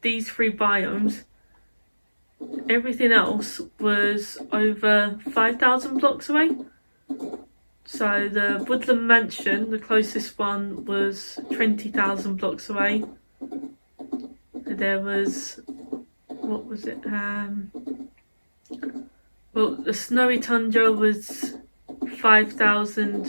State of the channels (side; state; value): both; inverted; correlation -1.00